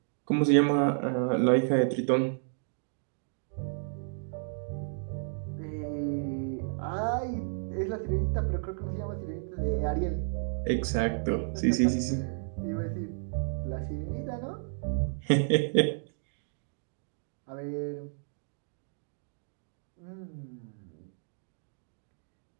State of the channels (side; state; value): left; silent; digital silence